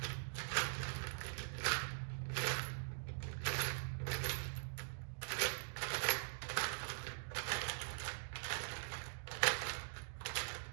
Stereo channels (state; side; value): silent; left; digital silence